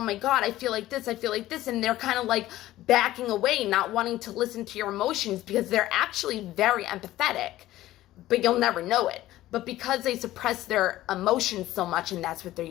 my God, I feel like this, and they're kind of like backing away, not wanting to listen to your emotions, because they're actually very empathetic, but you'll never know it. But because they suppress their emotions so much, and that's what they're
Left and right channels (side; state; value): right; quieter; 15.2 dB